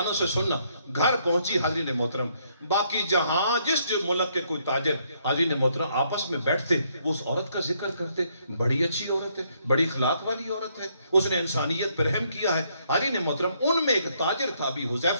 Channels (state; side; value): inverted; both; correlation -0.71